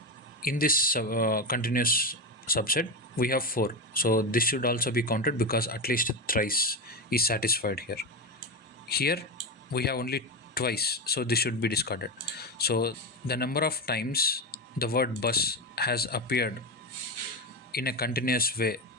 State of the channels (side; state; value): both; normal; correlation 0.15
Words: in this continuous subset we have 4, so this should also be counted because at least thrice is satisfied here. Here we have only twice, so this should be discarded. So the number of times the word bus has appeared in a continuous way